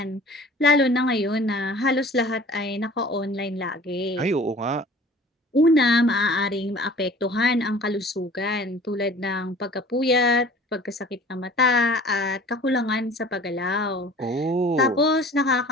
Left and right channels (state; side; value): normal; both; correlation 0.46